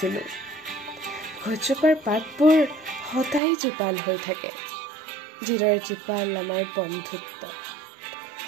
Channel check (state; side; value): drops out; left; at 3.4 s